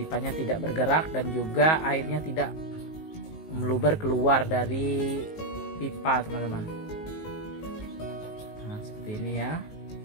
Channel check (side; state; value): right; late; 19 ms